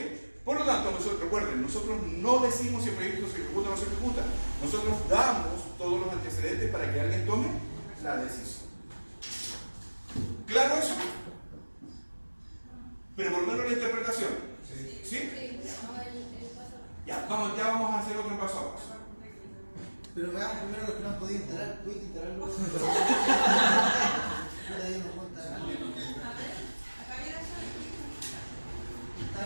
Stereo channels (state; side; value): inverted; both; correlation -1.00